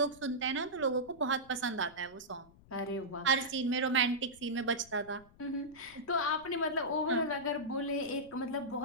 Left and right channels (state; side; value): noise; left; rumble, 25 dB below the sound